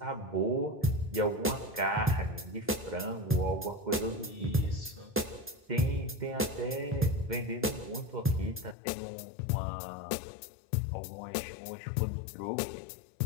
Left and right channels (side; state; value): right; drops out; at 8.8 s